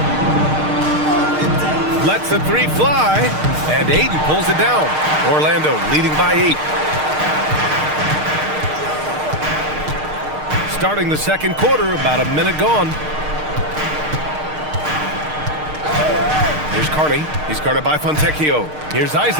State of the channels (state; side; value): late; left; 6.5 ms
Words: Lets the three fly, and Ayton pulls it down. Orlando leading by 8. Starting the second quarter, about a minute gone. Here's Carney. He's guarded by Fontecchio. Here's